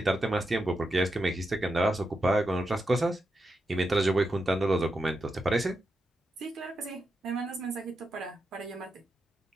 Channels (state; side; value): normal; both; correlation 0.86